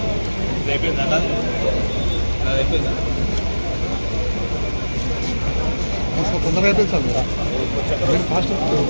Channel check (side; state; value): both; inverted; correlation -1.00